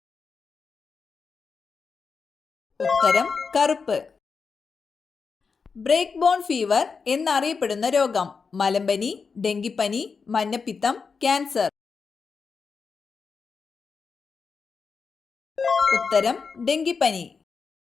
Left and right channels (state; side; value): quieter; right; 5.2 dB